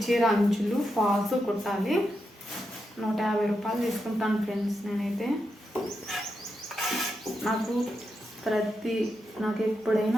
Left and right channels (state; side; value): normal; both; correlation 0.85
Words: చీర అంచులు ఫాల్స్ కుట్టాలి. 150 రూపాయలు తీసుకుంటాను ఫ్రెండ్స్ నేనైతే. నాకు